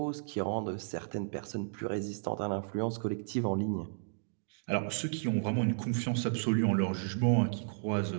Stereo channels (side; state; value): left; silent; digital silence